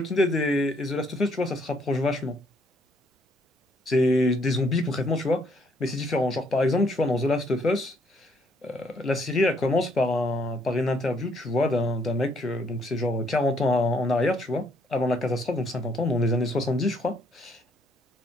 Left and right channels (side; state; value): both; normal; correlation 0.68